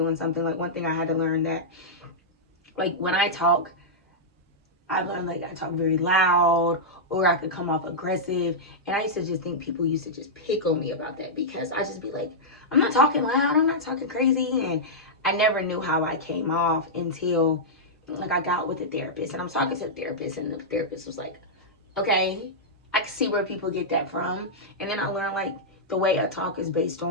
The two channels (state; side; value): normal; both; correlation -0.10